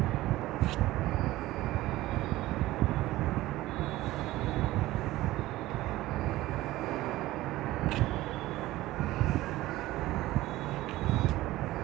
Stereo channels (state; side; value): quieter; left; 17.0 dB